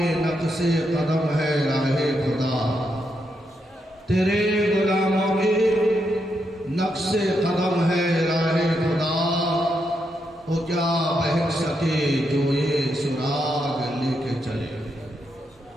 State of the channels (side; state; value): both; normal; correlation 0.81